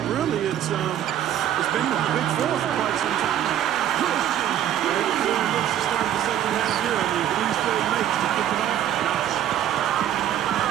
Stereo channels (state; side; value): quieter; left; 11.0 dB